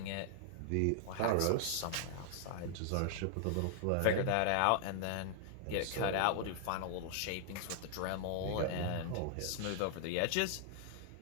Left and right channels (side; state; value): both; different; correlation 0.00